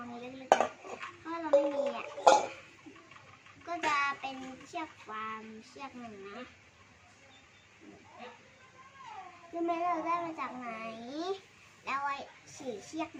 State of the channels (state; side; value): identical; both; correlation 1.00